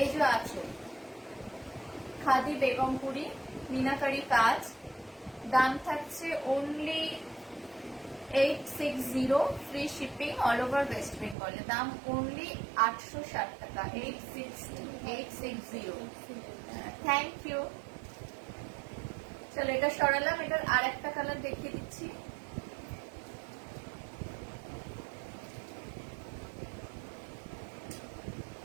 যে আঁচল। খাদি বেগমপুরি মিনাকারি কাজ, দাম থাকছে only 860 free shipping all over West Bengal. দাম only 860 টাকা। 860 থ্যাংক ইউ। চলো এটা সরালাম। এটার আর একটা কালার দেখিয়ে দিচ্ছি।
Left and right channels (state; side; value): drops out; left; at 11.4 s